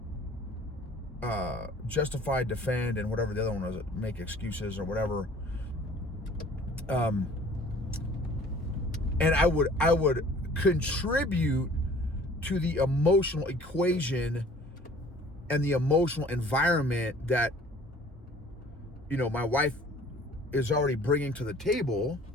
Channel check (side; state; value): both; normal; correlation 0.51